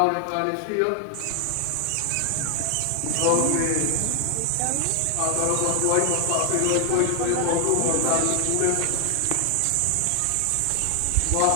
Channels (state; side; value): different; both; correlation 0.00